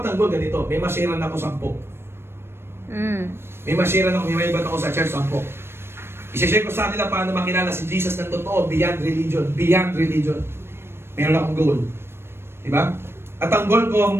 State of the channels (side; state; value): left; late; 0.12 ms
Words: goal ganito. May masiran ako 10. May masiran ako, may maibat ako sa church 10. I-share ko sa nila paano makilala si Jesus ng totoo, beyond religion. Beyond religion. Meron akong goal. Diba? At ang goal ko,